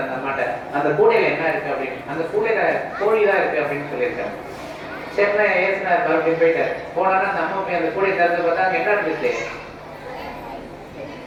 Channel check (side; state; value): both; identical; correlation 1.00